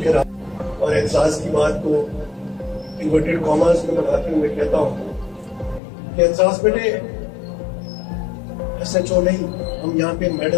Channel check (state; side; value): drops out; right; at 5.8 s